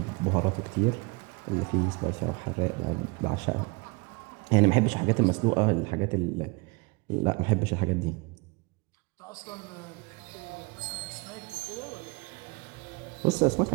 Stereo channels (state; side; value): quieter; left; 28.4 dB